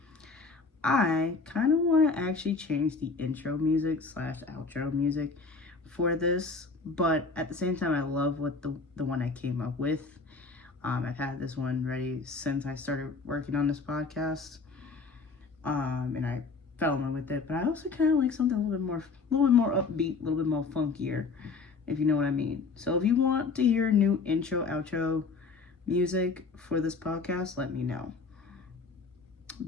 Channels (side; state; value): right; quieter; 4.3 dB